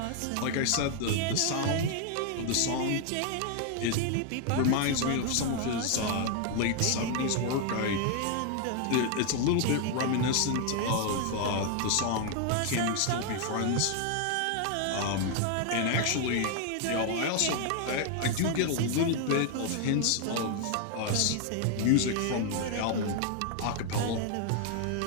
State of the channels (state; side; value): different; both; correlation 0.00